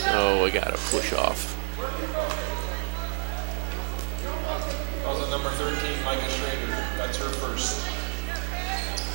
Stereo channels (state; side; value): silent; left; digital silence